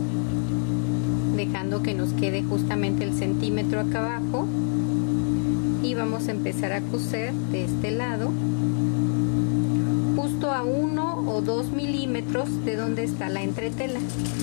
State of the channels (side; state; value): right; silent; digital silence